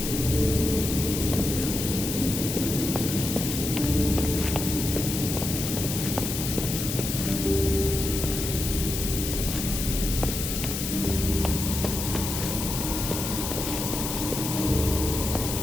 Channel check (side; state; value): left; noise; hiss, 4 dB below the sound